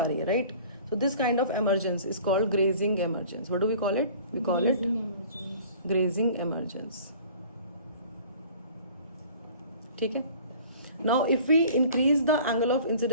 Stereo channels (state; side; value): inverted; both; correlation -0.47